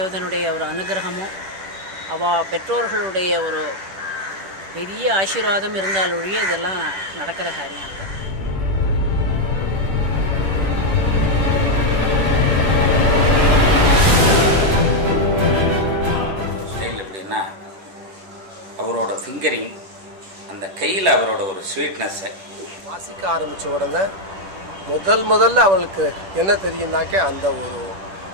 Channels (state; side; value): late; left; 10 ms